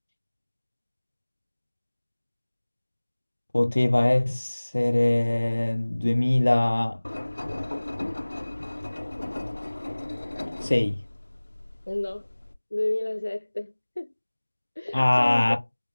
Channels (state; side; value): inverted; both; correlation -1.00